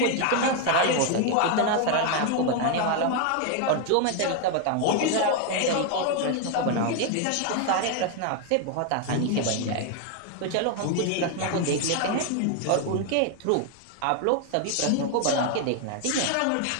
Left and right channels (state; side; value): different; both; correlation 0.01